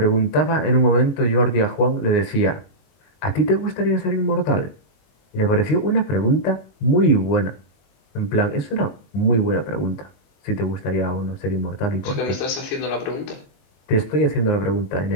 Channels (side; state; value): right; late; 21 ms